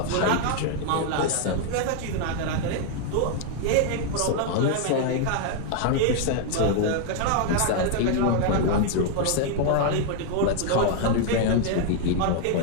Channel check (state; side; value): different; both; correlation 0.00